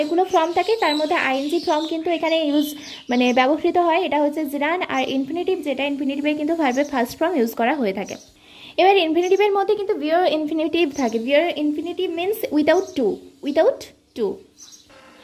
ফর্ম থাকে, তার মধ্যে আইএনজি ফর্ম কিন্তু এখানে মানে ব্যবহৃত হয়, এটা হচ্ছে জিরান। আর ইনফিনিটিভ যেটা, ইনফিনিটিভে কিন্তু ভার্বের ফার্স্ট ফর্ম ইউজ করা হয়ে থাকে। এবার ইনফিনিটিভের মধ্যে কিন্তু ভিয়ার ইনফিনিটিভ থাকে। Bare infinitive means without to.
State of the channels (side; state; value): both; identical; correlation 1.00